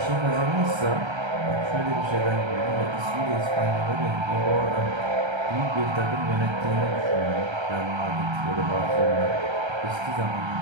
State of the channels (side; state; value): left; late; 1.3 ms